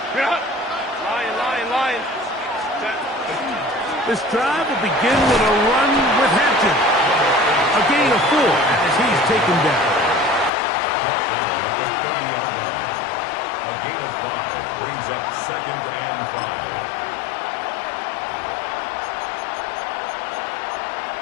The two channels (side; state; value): right; drops out; at 10.5 s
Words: This drive will begin with a run with Hampton. A gain of 4 as he's taken down. Brought down at the 30-yard line. A gain of 5 brings up 2nd and 5.